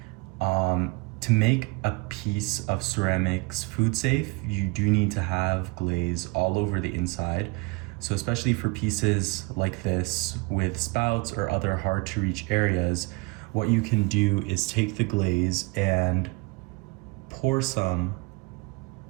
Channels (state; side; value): quieter; left; 26.0 dB